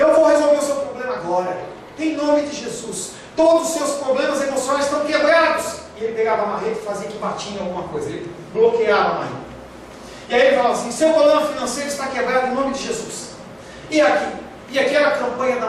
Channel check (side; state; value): both; identical; correlation 1.00